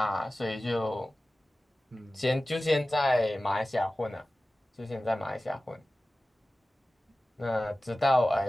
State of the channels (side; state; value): both; normal; correlation 0.96